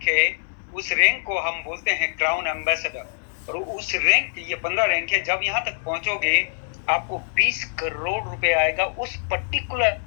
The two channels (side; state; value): right; silent; digital silence